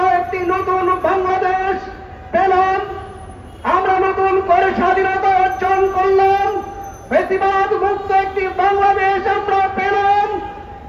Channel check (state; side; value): identical; both; correlation 1.00